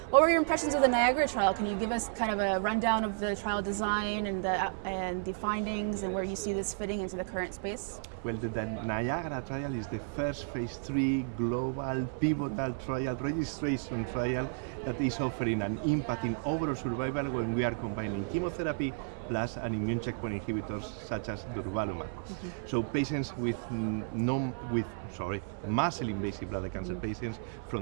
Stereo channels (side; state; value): left; silent; 56 dB below the other